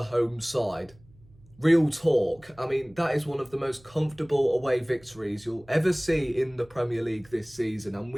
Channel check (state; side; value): noise; right; hum, 27 dB below the sound